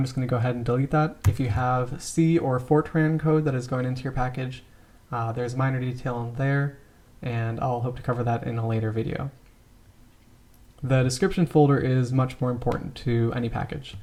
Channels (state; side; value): identical; both; correlation 1.00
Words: just going to go ahead and delete that. If you have C or Fortran code that is going into your package, there's minor detail in there, and I'll hope to cover that in a later video. The description folder is much more important to any package.